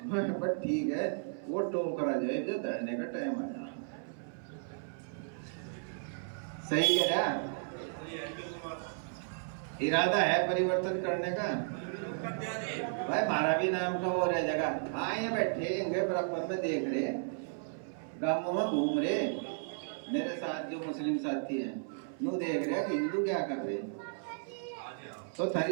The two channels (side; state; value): left; silent; 55 dB below the other